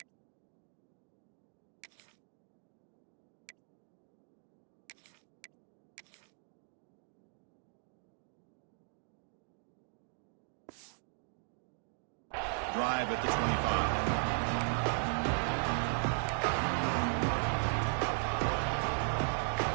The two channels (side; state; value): left; silent; 53 dB below the other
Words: Drive at the 25.